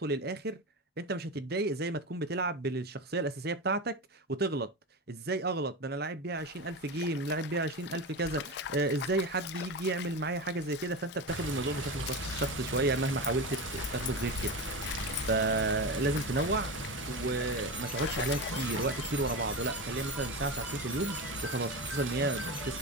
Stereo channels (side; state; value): both; normal; correlation 0.22